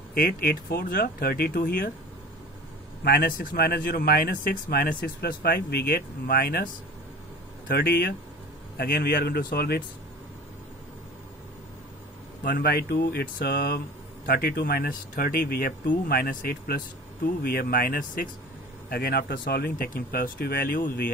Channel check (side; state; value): both; normal; correlation 0.40